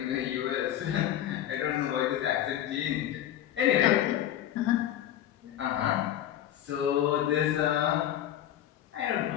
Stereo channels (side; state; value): right; quieter; 11.6 dB